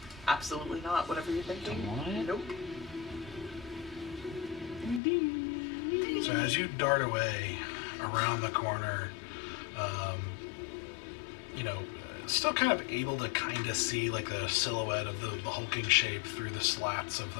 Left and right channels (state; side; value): drops out; right; at 5.0 s